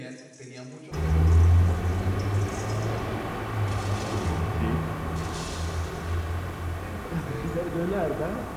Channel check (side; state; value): both; identical; correlation 1.00